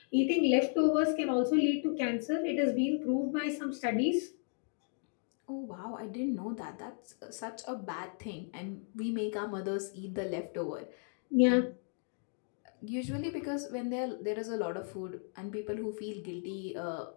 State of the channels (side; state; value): right; silent; 55 dB below the other